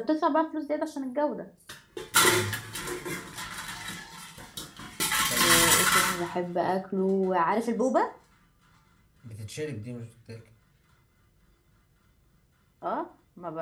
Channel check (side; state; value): both; identical; correlation 1.00